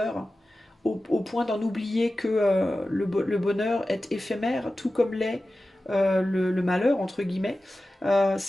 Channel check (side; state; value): both; normal; correlation 0.94